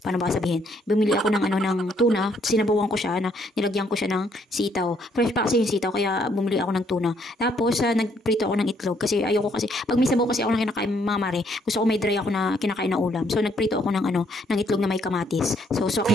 Paano ba sabihin? Bumili ako ng tuna, sinabawan ko siya, nilagyan ko siya ng sitaw. Fresh pa kasi yung sitaw, kaya bumili ako ng tuna. Tapos, nagprito ako ng itlog kasi ayoko kasi, pag may sabaw kasi ako na kinakain mga mare, gusto ko may dry ako na kinakain na ulam. So, nagprito ako ng itlog na may kamatis. So, sok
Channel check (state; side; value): normal; both; correlation 0.69